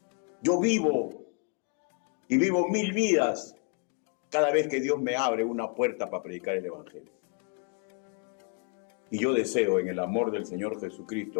Yo vivo 1000 vidas cada vez que Dios me abre una puerta para predicar el Evangelio. Y yo deseo en el amor del Señor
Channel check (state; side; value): quieter; right; 38.1 dB